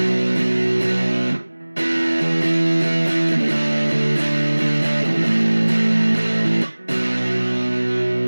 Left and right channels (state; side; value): inverted; both; correlation -1.00